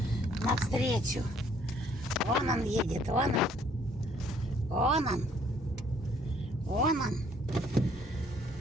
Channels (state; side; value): normal; both; correlation 0.63